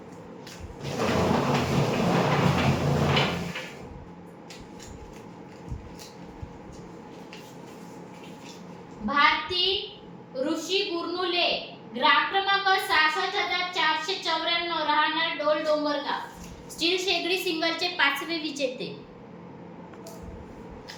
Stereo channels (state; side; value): identical; both; correlation 1.00